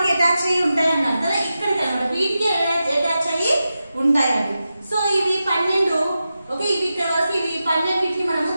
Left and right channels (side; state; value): both; inverted; correlation -0.91